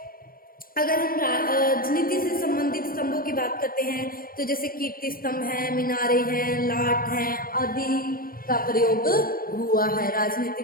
अगर हम राजनीति से संबंधित स्तंभों की बात करते हैं तो जैसे कीर्ति स्तंभ है, मीनारे हैं, लाट हैं आदि का प्रयोग हुआ है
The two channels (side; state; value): right; late; 0.42 ms